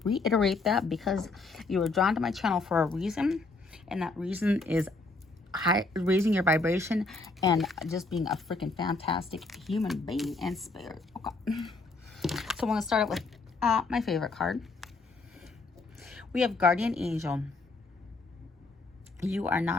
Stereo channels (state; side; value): quieter; right; 3.5 dB